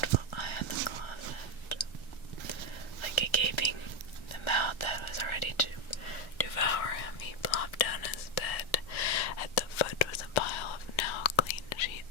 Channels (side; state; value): right; late; 1.3 ms